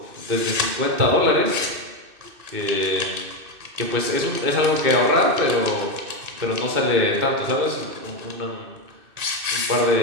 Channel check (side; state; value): left; late; 2.6 ms